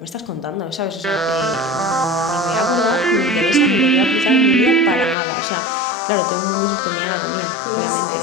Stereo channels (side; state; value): right; drops out; at 5.2 s